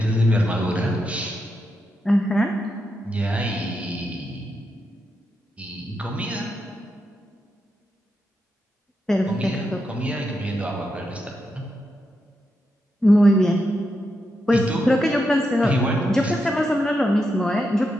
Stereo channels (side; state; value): both; normal; correlation 0.85